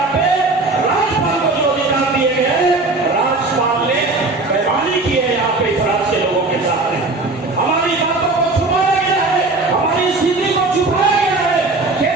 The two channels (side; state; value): left; quieter; 3.3 dB